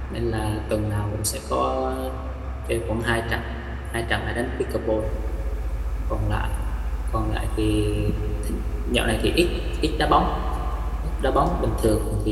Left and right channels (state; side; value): identical; both; correlation 1.00